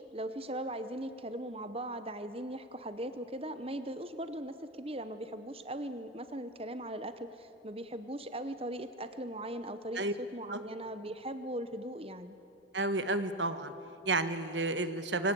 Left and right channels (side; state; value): both; normal; correlation 0.19